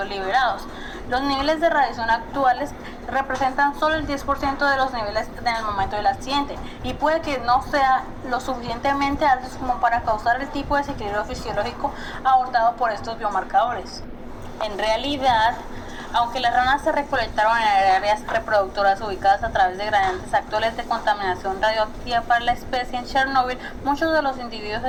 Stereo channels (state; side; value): identical; both; correlation 1.00